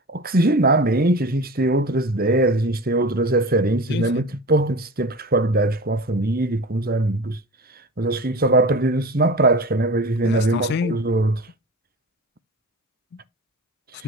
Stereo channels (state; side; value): normal; both; correlation 0.34